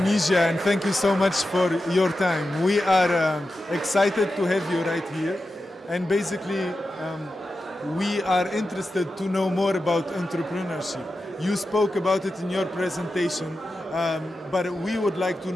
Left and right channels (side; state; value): both; normal; correlation 0.91